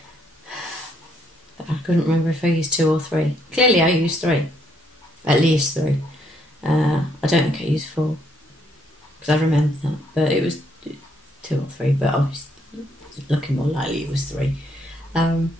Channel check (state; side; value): normal; both; correlation 0.71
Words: But I couldn't remember if I used 2 or 3. Clearly I used 3. At least 3. I don't think I used 4, because I remember that, but it was 2 or 3, but I was looking more likely it was 3. And